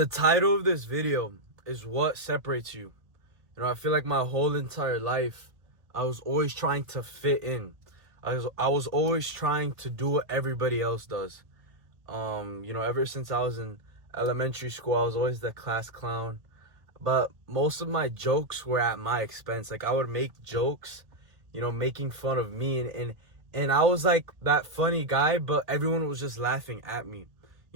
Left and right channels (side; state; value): left; late; 1.8 ms